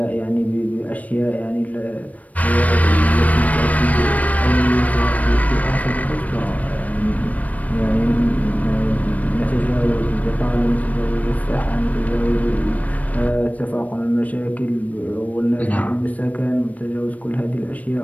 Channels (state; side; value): late; right; 0.070 ms